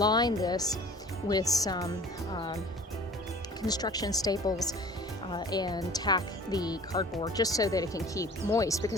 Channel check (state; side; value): normal; both; correlation 0.46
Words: this with some construction staples and tack the cardboard just so that it can keep moist,